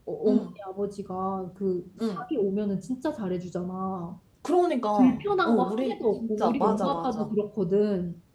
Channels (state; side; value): identical; both; correlation 1.00